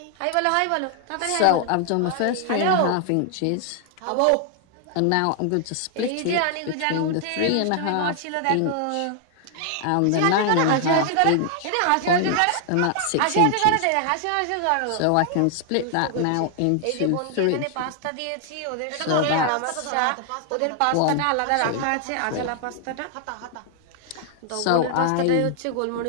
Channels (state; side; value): different; both; correlation 0.00